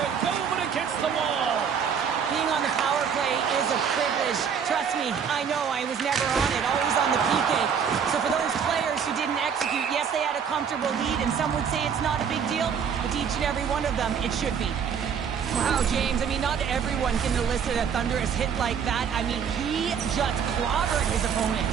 go but against the wall. Being on the power play is a privilege. Trust me, I know I was never on it, always on the PK. So for those players who didn't execute, yes, they had a comfortable lead, and some would say it's not a big deal, but to each and every one of them, it should be. Wow, James, I mean, not everyone can elicit a thunderous hit like that. I mean, he just clobbered his opponent.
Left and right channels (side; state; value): left; quieter; 7.2 dB